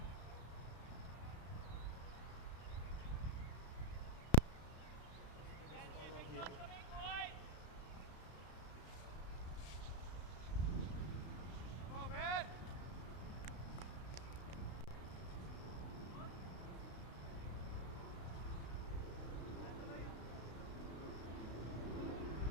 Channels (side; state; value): right; late; 33 ms